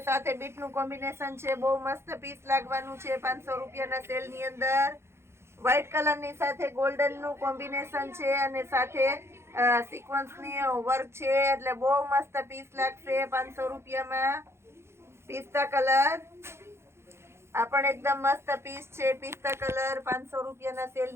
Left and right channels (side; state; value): left; late; 0.12 ms